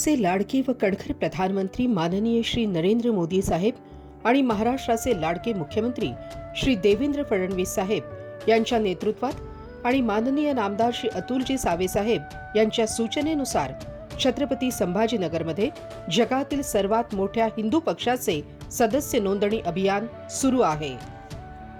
लाडके व कणखर प्रधानमंत्री माननीय श्री नरेंद्र मोदी साहेब आणि महाराष्ट्राचे लाडके मुख्यमंत्री श्री देवेंद्र फडणवीस साहेब यांच्या नेतृत्वात आणि माननीय नामदार श्री अतुलजी सावे साहेब यांच्या सूचनेनुसार छत्रपती संभाजीनगरमध्ये जगातील सर्वात मोठ्या हिंदू पक्षाचे सदस्य नोंदणी अभियान सुरू आहे।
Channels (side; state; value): both; identical; correlation 1.00